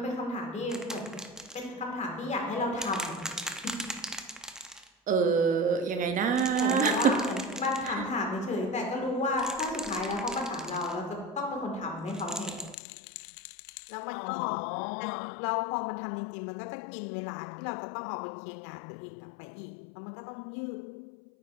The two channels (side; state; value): right; drops out; at 12.8 s